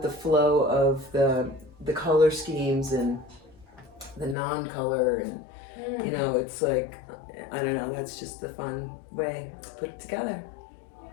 the flow of the color schemes and the non-color, and it's like, I don't know, that's just the fun way to put it together.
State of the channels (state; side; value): drops out; right; at 4.4 s